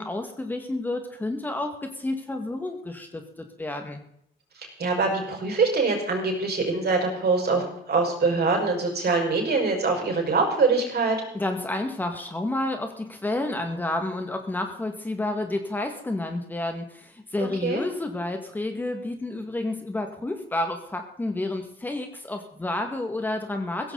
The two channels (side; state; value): both; normal; correlation 0.41